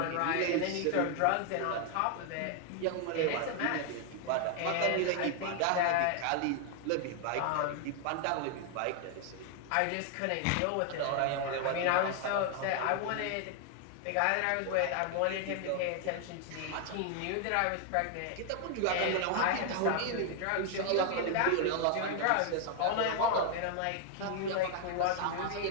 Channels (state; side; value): different; both; correlation 0.00